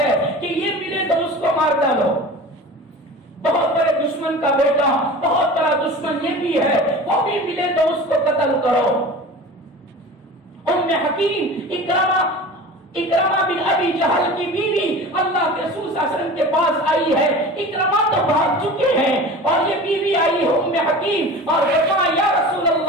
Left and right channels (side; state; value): both; normal; correlation 0.36